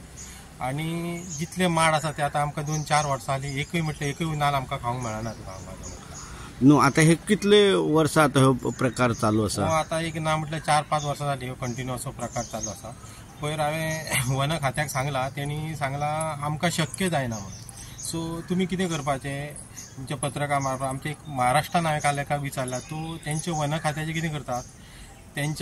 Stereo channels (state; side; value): identical; both; correlation 1.00